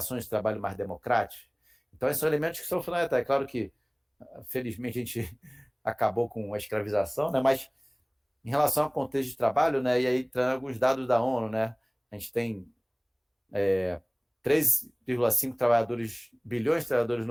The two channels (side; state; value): both; identical; correlation 1.00